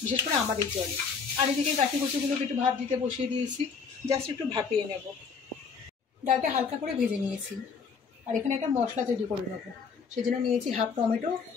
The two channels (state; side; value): quieter; right; 5.7 dB